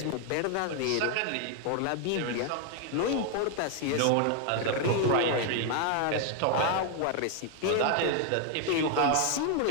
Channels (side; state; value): both; different; correlation 0.01